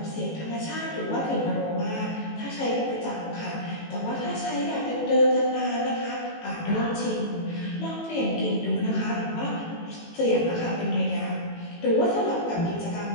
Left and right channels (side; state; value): right; late; 18 ms